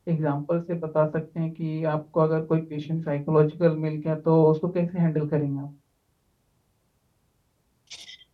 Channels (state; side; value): identical; both; correlation 1.00